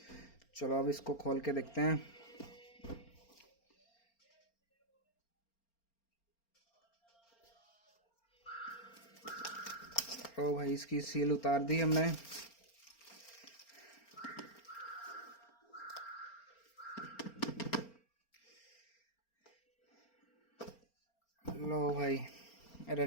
चलो अब इसको खोल के देखते हैं। ओ भाई, इसकी सील उतार दी हमने। लो भाई,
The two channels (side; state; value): right; late; 4.4 ms